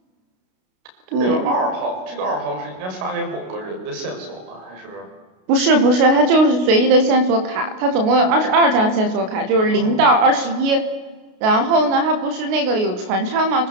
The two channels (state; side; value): late; left; 32 ms